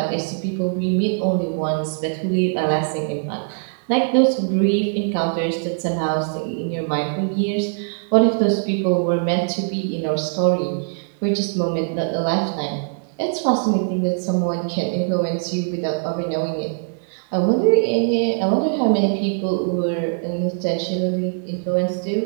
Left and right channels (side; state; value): left; silent; digital silence